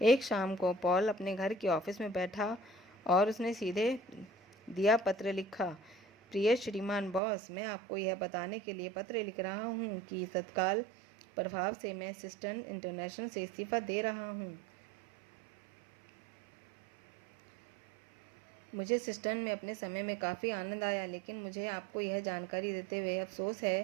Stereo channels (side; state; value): left; drops out; at 7.2 s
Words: एक शाम को पॉल अपने घर के ऑफिस में बैठा और उसने सीधे दिया पत्र लिखा। प्रिय श्रीमान बॉस, मैं आपको यह बताने के लिए पत्र लिख रहा हूँ कि तत्काल प्रभाव से मैं सिस्टर्न इंटरनेशनल से इस्तीफा दे रहा हूँ। मुझे सिस्टर्न में अपने समय में काफ़ी आनंद आया, लेकिन मुझे आपको यह जानकारी देते हुए अफसोस है